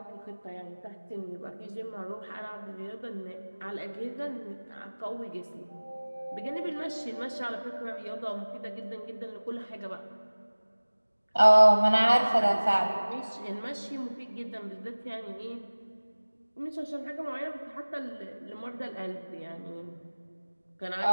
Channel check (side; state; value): both; inverted; correlation -1.00